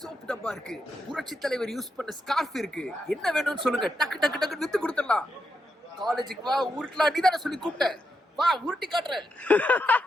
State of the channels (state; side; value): normal; both; correlation 0.84